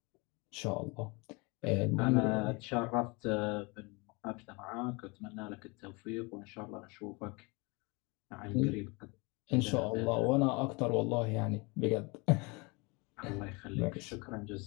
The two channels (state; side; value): quieter; right; 27.9 dB